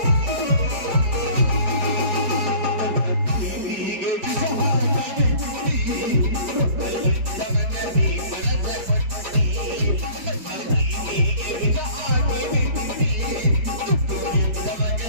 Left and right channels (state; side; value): late; left; 4.8 ms